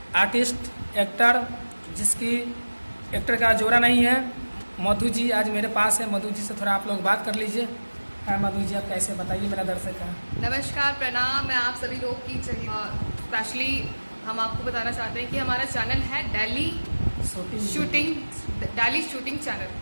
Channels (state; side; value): inverted; both; correlation -1.00